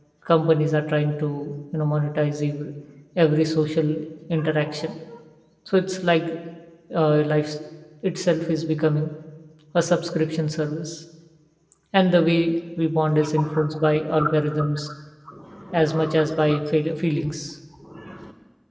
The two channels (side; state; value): both; identical; correlation 1.00